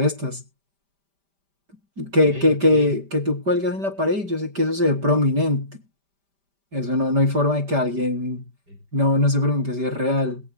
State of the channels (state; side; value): late; left; 5.1 ms